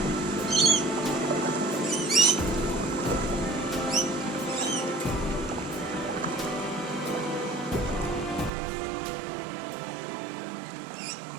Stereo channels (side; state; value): left; drops out; at 8.5 s